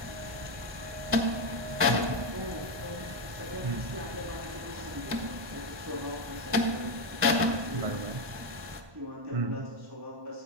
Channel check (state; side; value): late; left; 1.2 ms